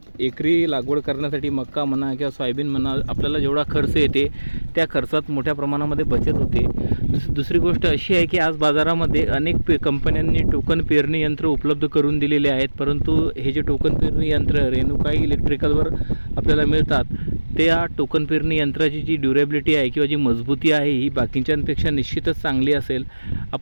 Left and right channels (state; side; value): inverted; both; correlation -1.00